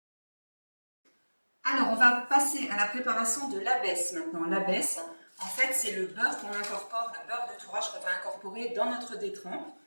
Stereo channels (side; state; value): both; inverted; correlation -1.00